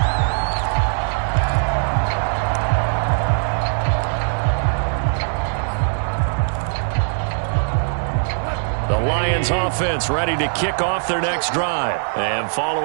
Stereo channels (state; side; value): silent; left; 65 dB below the other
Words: Offense ready to kick off their next drive. And